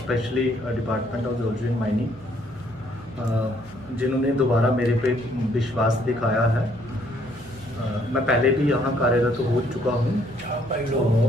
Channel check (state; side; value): noise; right; hum, 22 dB below the sound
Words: department of geology and mining, जिन्होंने दोबारा मेरे पे विश्वास दिखाया है। मैं पहले भी यहाँ कार्यरत हो चुका हूँ